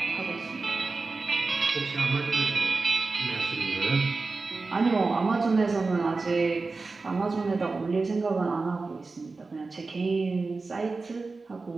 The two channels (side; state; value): left; quieter; 3.9 dB